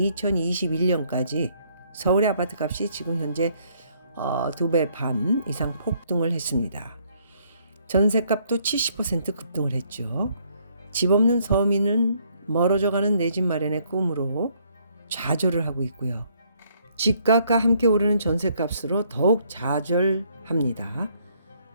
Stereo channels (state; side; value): inverted; both; correlation -0.67